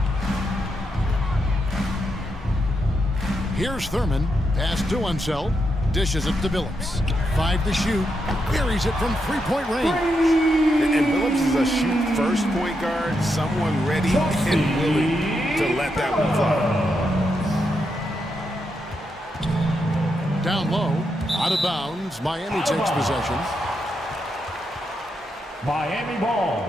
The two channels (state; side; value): normal; both; correlation 0.83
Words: Here's Thurman. Pass to Unseld. Dishes it to Billups. 5 to shoot. Buries it from three-point range. And Billups is a shoot-first point guard, someone ready and willing to let that one fly. Down low, out of bounds. Miami takes possession. Miami ball.